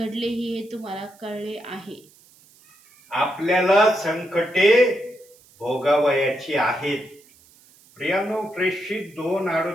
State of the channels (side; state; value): right; noise; hiss, 28 dB below the sound